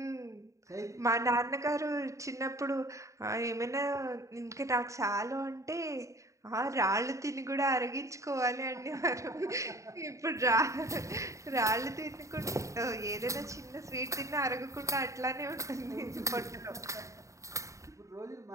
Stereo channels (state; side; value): late; left; 0.15 ms